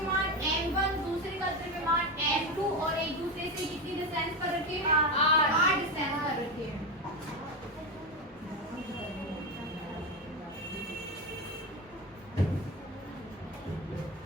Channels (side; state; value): both; normal; correlation 0.15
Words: M1, दूसरे का द्रव्यमान M2 और एक दूसरे से कितनी डिस्टेंस पर रखे हैं? r डिस्टेंस पर रखे हैं।